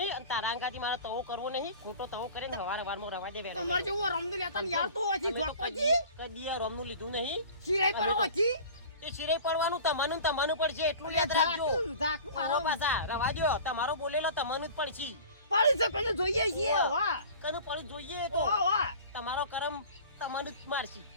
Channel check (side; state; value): both; inverted; correlation -0.41